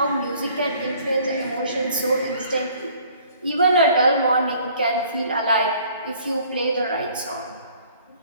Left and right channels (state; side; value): inverted; both; correlation -0.56